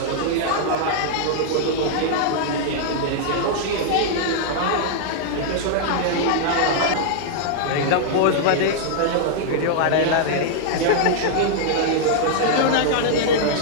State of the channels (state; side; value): different; both; correlation -0.01